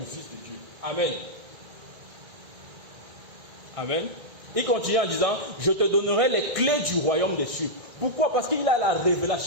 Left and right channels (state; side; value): late; left; 1.9 ms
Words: Fils de Dieu. Amen. Amen. Il continue en disant, je te donnerai les clés du royaume des cieux. Pourquoi? Parce qu'il a la